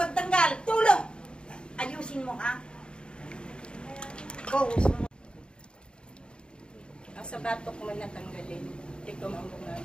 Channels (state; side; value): late; right; 0.051 ms